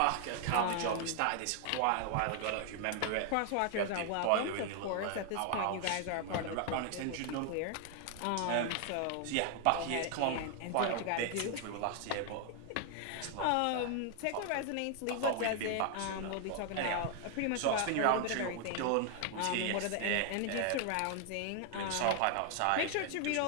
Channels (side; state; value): both; different; correlation 0.00